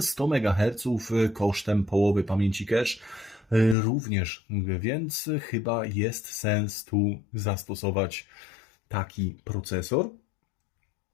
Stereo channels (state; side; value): drops out; right; at 3.8 s